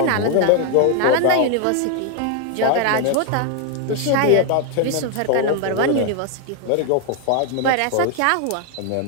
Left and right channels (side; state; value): both; different; correlation 0.00